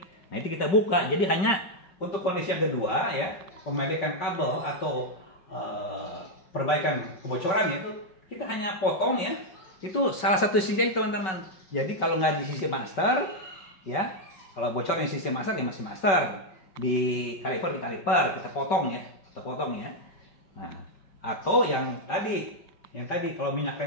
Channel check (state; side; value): late; right; 5.3 ms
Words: nah itu kita buka. Jadi hanya untuk kondisi yang kedua ya, pemedekan kabel atau perbaikan kebocoran itu kita hanya potong ya. Itu salah satu sisi aja teman-teman. Jadi kalau nggak di sisi master ya, kalau bocor di sisi master ya masih master. Di kaliper kita potong ya, Nah, atau yang tadi kalau minyak